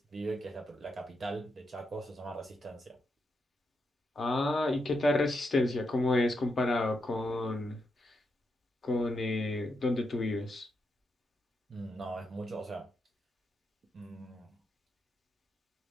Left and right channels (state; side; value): normal; both; correlation 0.83